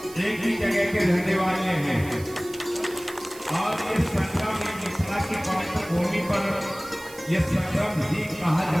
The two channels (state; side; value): noise; right; hiss, 18 dB below the sound